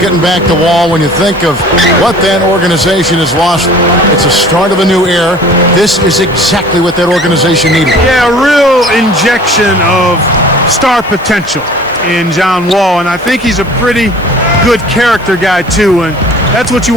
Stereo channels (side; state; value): right; noise; hiss, 27 dB below the sound